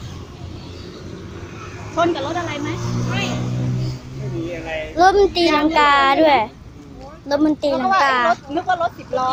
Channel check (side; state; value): both; identical; correlation 1.00